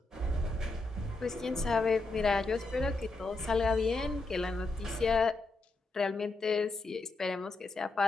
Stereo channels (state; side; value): quieter; right; 3.3 dB